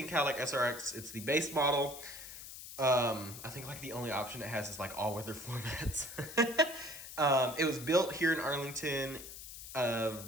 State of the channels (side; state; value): left; noise; hiss, 12 dB below the sound